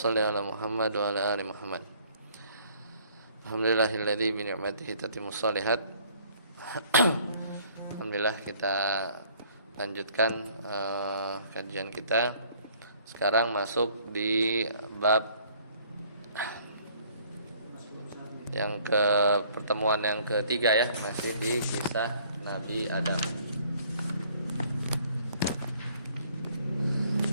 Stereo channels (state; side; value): inverted; both; correlation -0.59